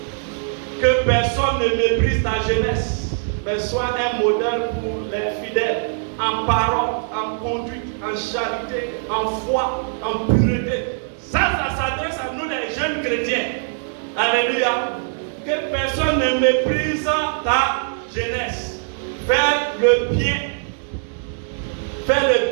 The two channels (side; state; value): left; silent; 65 dB below the other